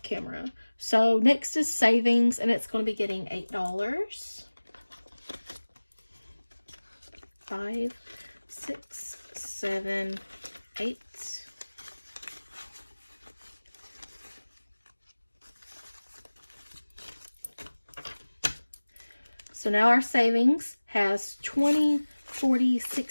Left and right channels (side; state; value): both; inverted; correlation -1.00